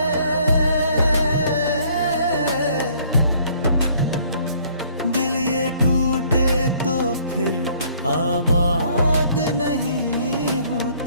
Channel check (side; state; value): both; inverted; correlation -0.60